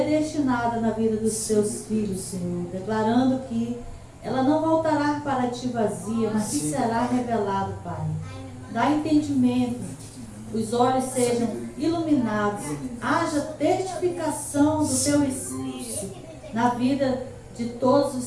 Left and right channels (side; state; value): both; identical; correlation 1.00